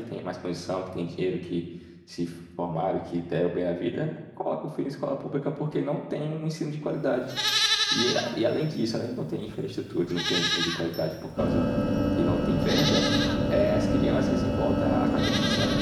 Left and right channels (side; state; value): both; identical; correlation 1.00